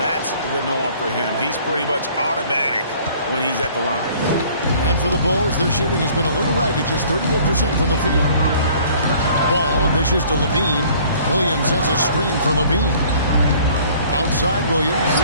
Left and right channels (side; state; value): both; inverted; correlation -0.54